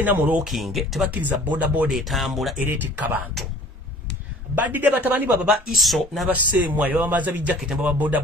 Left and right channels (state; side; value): normal; both; correlation 0.49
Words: mu looking tebakkiriza boda etambula era etikka bantu badidde batabani baba iso n'abaseemwa bamaza bijaketi baba boda